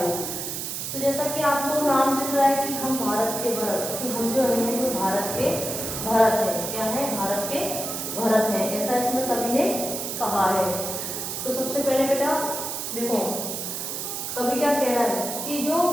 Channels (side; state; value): right; noise; hiss, 4 dB below the sound